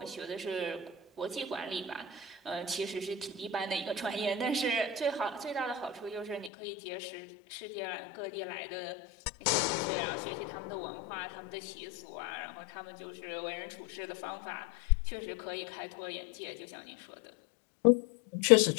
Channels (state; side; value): drops out; right; at 6.5 s